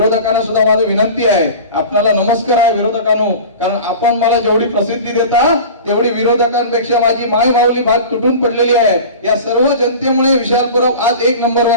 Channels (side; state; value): both; inverted; correlation -0.36